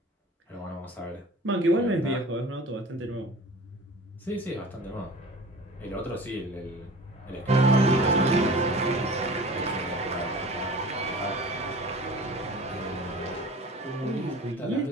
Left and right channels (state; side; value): normal; both; correlation 0.41